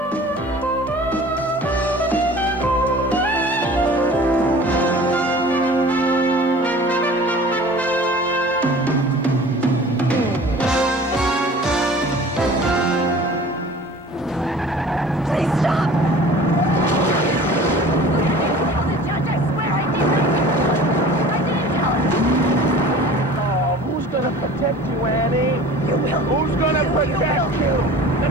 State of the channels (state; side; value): normal; both; correlation 0.44